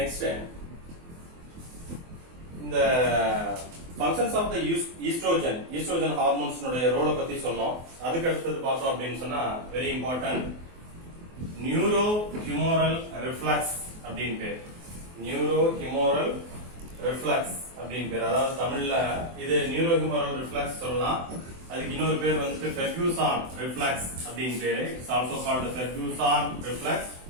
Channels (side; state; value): left; late; 24 ms